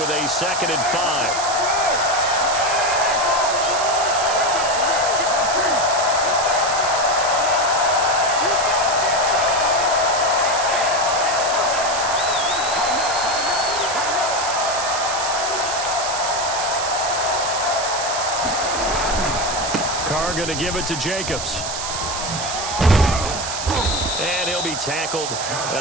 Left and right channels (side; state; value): right; noise; hiss, 5 dB below the sound